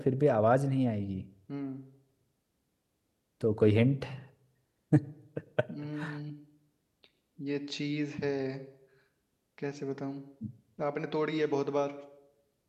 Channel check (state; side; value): identical; both; correlation 1.00